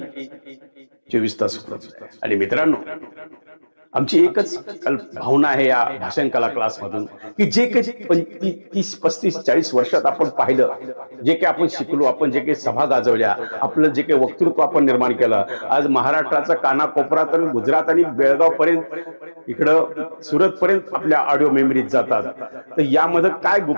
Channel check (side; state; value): both; inverted; correlation -1.00